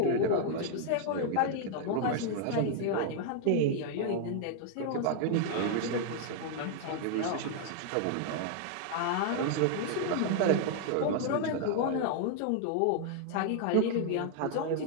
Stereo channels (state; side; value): different; both; correlation 0.00